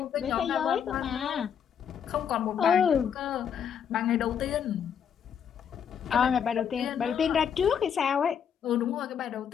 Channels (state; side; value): quieter; right; 8.0 dB